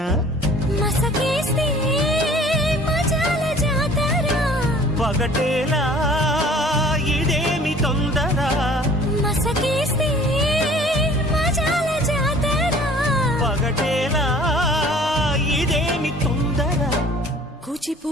మసకేస్తే మజాల జాతర పగటేలా ఇదేమి తొందర మసకేస్తే మజాల జాతర పగటేలా ఇదేమి తొందర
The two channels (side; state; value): both; normal; correlation 0.51